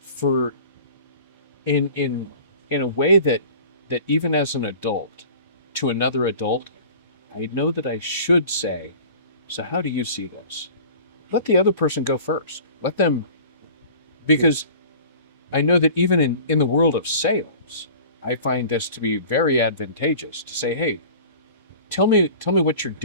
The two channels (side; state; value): both; inverted; correlation -0.43